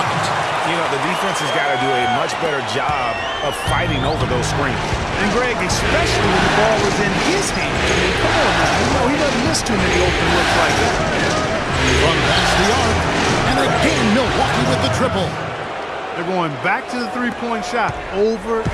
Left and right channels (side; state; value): both; identical; correlation 1.00